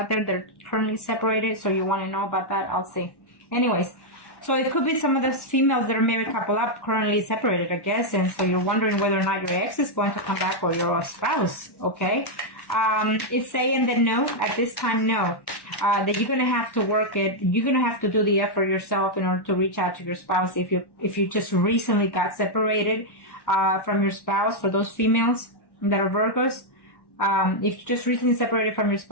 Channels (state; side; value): late; right; 1.1 ms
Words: there that are currently separated. So you want to know about that? I'll see. Anyways, so it could be some of the females that are married couple up currently separated, I guess. And so you're wondering whether or not your ex is going to come back, or your spouse. Okay. It's saying that no, at this time, no. That you're going to have to work it. You're going to have to do the effort yourself in order to reach out to your spouse. If you just recently got separated from your spouse, for those females that are Virgos, if you just recently separated from your